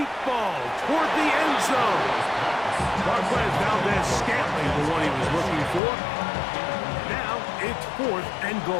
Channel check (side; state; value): right; drops out; at 5.8 s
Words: ball toward the end zone. Marquez Valdez-Scantling, the one he was looking for. Now it's 4th and